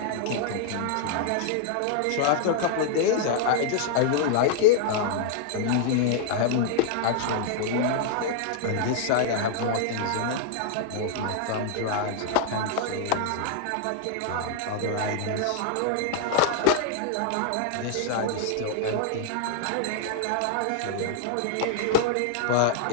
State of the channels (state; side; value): different; both; correlation 0.00